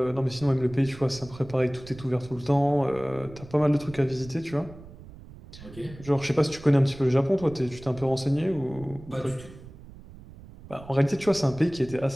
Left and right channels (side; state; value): right; noise; rumble, 18 dB below the sound